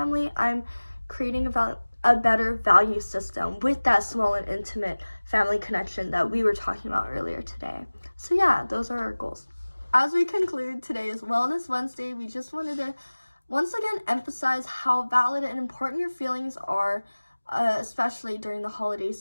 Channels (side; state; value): both; inverted; correlation -1.00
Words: I'm creating a better value system with that small and intimate family connection that we were talking about earlier today. So yeah, those are our goals. As we conclude today's Wellness Wednesday, we just wanted to once again emphasize how valid and important your feelings are, especially during the holiday